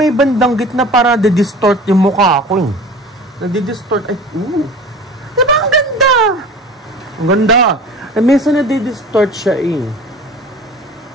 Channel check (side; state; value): both; normal; correlation 0.40